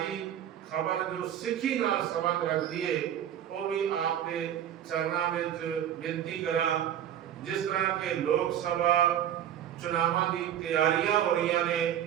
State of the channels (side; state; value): left; quieter; 10.4 dB